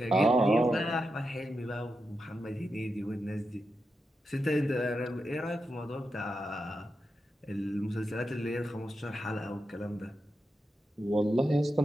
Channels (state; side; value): normal; both; correlation 0.87